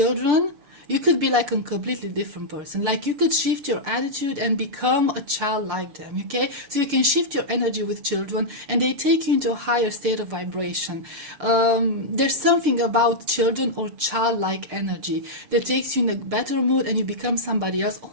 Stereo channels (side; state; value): left; late; 6.9 ms